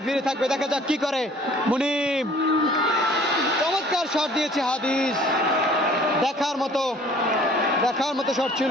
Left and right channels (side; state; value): both; normal; correlation 0.53